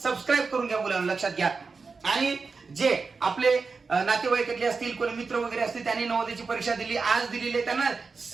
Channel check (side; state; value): left; quieter; 4.6 dB